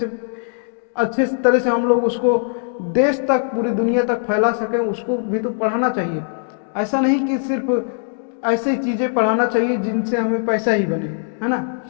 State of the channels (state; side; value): silent; right; 66 dB below the other